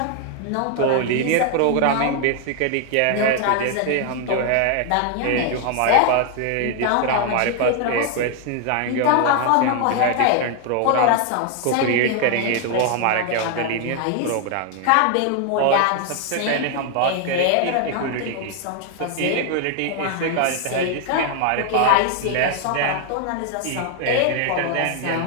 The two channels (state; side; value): different; both; correlation 0.00